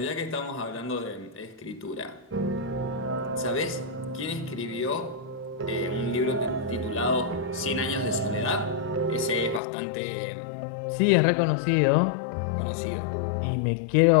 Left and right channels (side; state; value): right; drops out; at 9.6 s